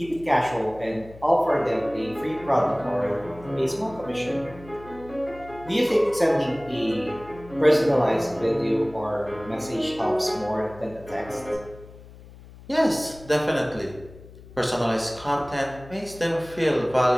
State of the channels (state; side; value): noise; left; hum, 19 dB below the sound